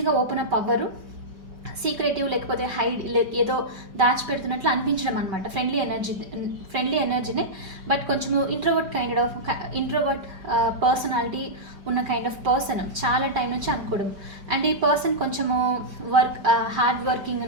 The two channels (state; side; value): late; left; 5.2 ms